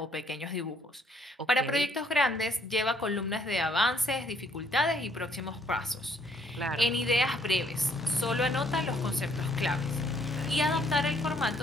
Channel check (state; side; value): normal; both; correlation 0.66